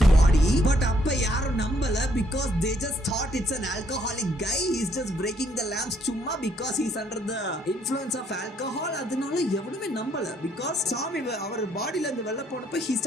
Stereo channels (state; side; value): normal; both; correlation 0.68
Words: body, but அப்ப யாரும் நம்பல because they just thought it's an alcoholic guy, he's just breaking the lamps சும்மா because he's under the influence of alcohol. அதனால எவனுமே நம்பல because சாமி அவர் பாடியில இருந்து வெளில போனப்ப he